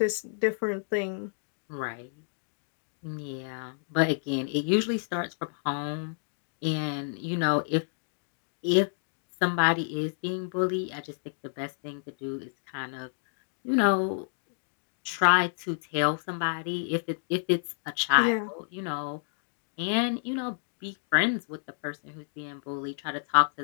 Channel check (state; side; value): silent; right; digital silence